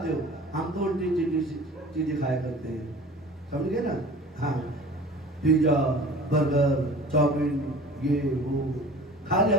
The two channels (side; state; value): both; normal; correlation 0.42